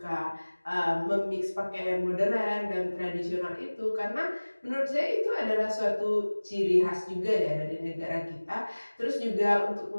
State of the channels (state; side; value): inverted; both; correlation -1.00